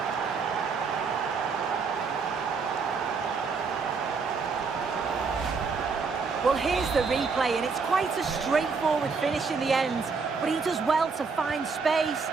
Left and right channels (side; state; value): left; quieter; 5.0 dB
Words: Well, here's the replay, and it's quite a straightforward finish in the end. But he does well to find space